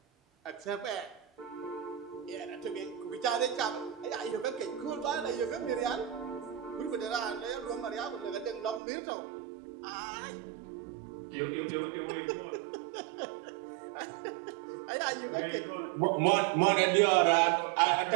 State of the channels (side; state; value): left; drops out; at 8.8 s